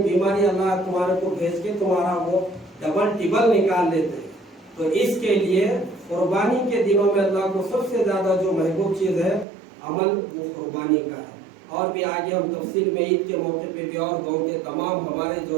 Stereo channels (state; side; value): drops out; left; at 9.5 s